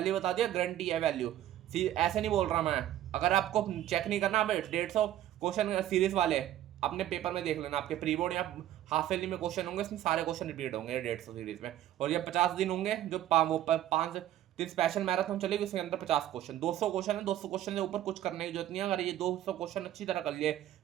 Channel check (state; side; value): quieter; left; 12.6 dB